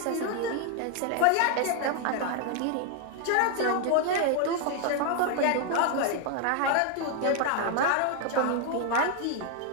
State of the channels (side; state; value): both; different; correlation 0.00